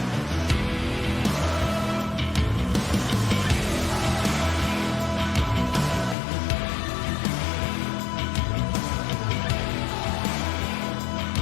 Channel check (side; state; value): right; drops out; at 6.2 s